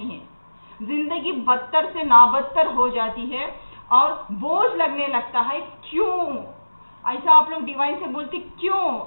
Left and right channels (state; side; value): inverted; both; correlation -1.00